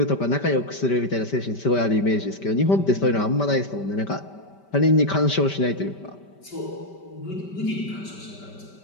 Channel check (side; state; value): right; late; 5.2 ms